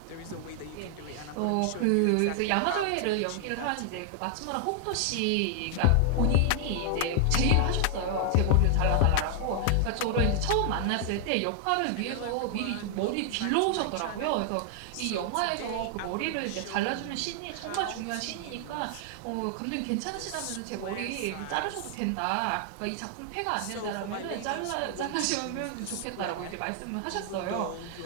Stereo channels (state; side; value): different; both; correlation 0.00